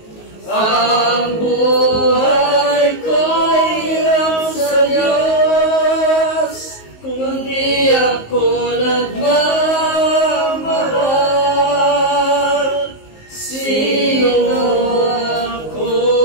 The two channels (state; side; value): late; right; 19 ms